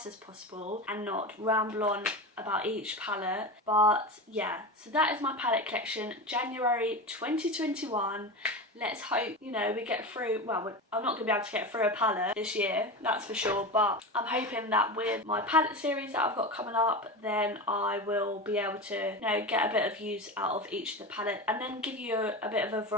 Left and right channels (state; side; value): normal; both; correlation 0.24